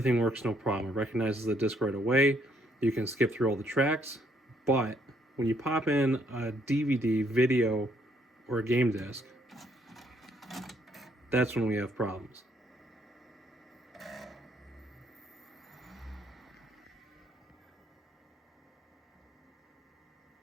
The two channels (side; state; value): both; normal; correlation 0.70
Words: works no problem. It recognizes the disc right away. You can skip through all the tracks, but when you pop in a DVD, video, or a game disc, that's when we have problems.